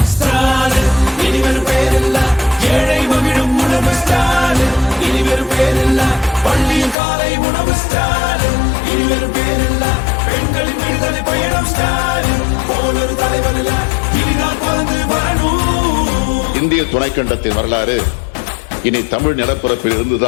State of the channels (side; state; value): right; drops out; at 7.0 s